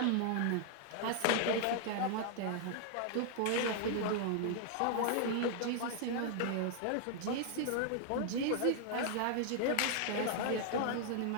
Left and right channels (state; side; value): different; both; correlation 0.00